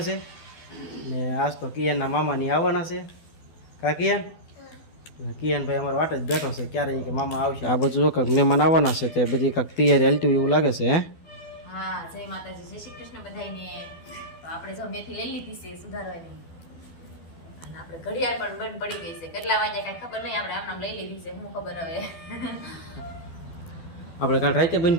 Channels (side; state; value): right; late; 12 ms